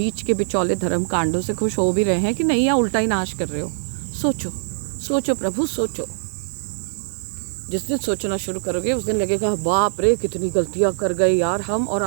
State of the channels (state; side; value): silent; left; digital silence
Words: के बिचौले धर्म कांडों से खुश हो भी रहे हैं कि नहीं, या उल्टा ही नाश कर रहे हो। सोचो, सोचो प्रभु, सोचो। जिस दिन सोचना शुरू करोगे उस दिन लगेगा बाप रे कितनी गलतियां कर गए यार हम, और